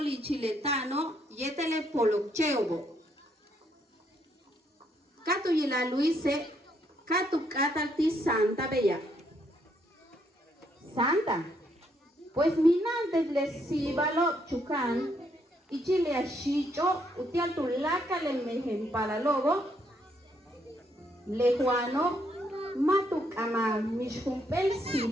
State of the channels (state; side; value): normal; both; correlation 0.73